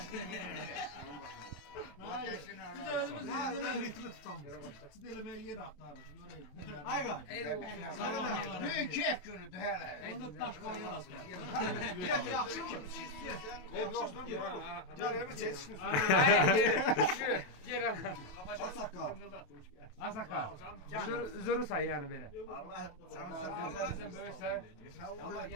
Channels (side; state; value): right; late; 27 ms